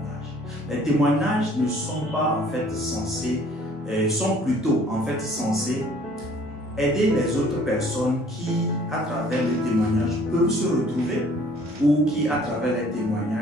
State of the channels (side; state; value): both; normal; correlation 0.56